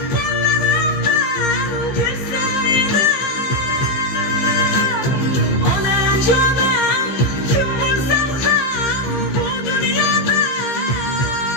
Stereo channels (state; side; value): late; right; 15 ms